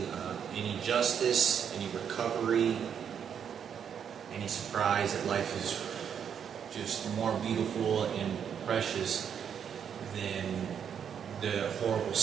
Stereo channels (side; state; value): left; quieter; 8.0 dB